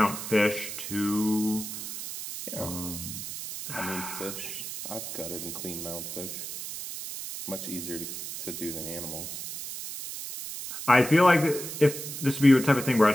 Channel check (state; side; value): noise; right; hiss, 8 dB below the sound